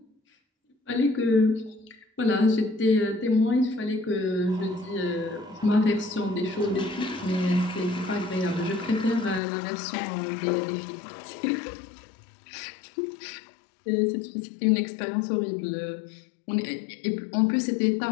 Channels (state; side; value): drops out; right; at 9.4 s